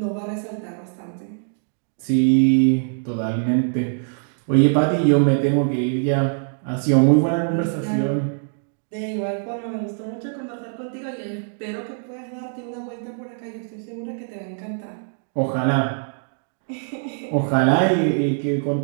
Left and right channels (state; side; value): silent; left; digital silence